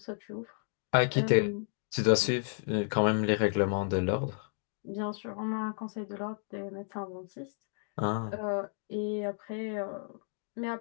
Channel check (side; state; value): right; silent; digital silence